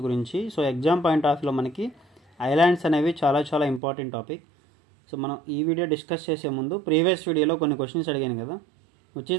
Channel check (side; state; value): left; drops out; at 3.8 s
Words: గురించి. సో ఎగ్జామ్ పాయింట్ ఆఫ్ వ్యూలో మనకి ఐలాండ్స్ అనేవి చాలా ఇంపార్టెంట్ టాపిక్. సో మనం ఈ వీడియో డిస్కస్ చేసే ముందు ప్రీవియస్ వీడియోలో కొన్ని క్వశ్చన్స్ అడిగాను కదా, which